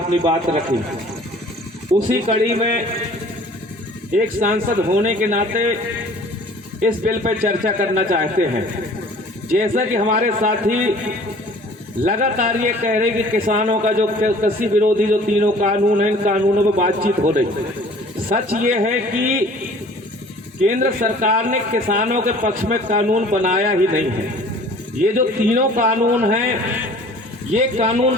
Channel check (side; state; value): both; normal; correlation 0.49